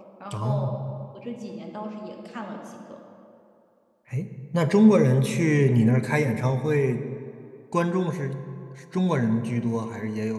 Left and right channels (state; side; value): identical; both; correlation 1.00